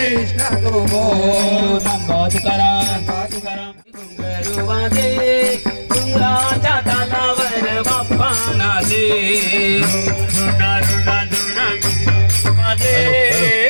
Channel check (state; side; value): inverted; both; correlation -1.00